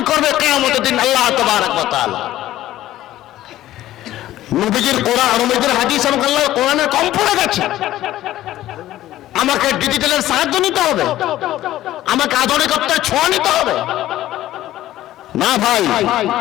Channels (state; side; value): quieter; right; 14.2 dB